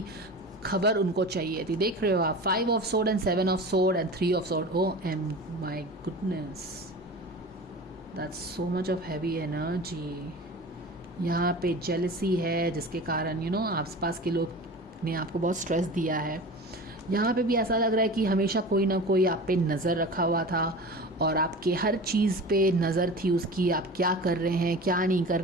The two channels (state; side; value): normal; both; correlation 0.34